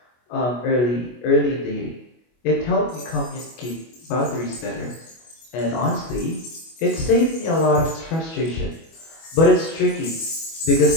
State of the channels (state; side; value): late; right; 25 ms